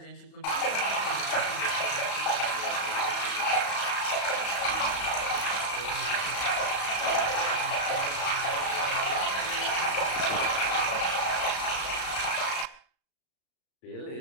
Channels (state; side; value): late; right; 35 ms